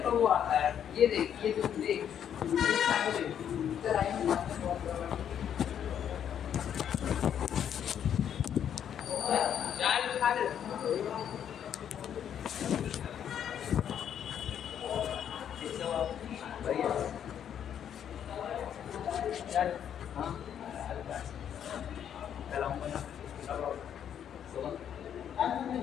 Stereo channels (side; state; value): right; quieter; 9.2 dB